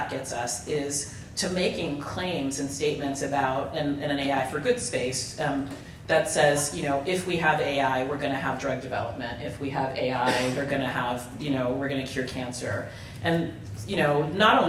gets us is to making claims and statements about in an AI for good space that says, if we have AI, we're going to have drug development. If we have AI, we're going to have, we're going to cure cancer. And, not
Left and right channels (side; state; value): both; identical; correlation 1.00